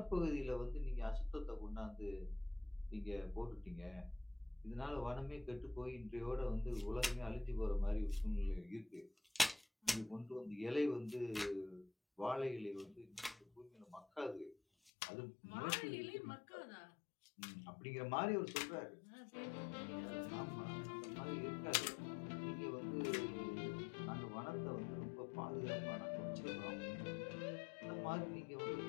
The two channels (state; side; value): drops out; right; at 14.9 s